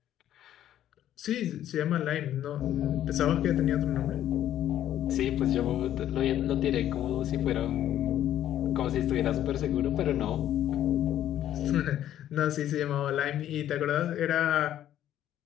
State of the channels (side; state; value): right; quieter; 11.7 dB